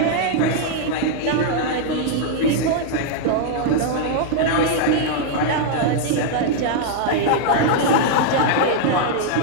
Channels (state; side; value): different; both; correlation 0.00